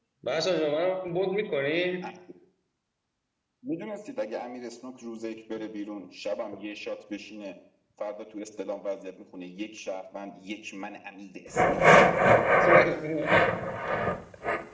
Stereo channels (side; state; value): both; identical; correlation 1.00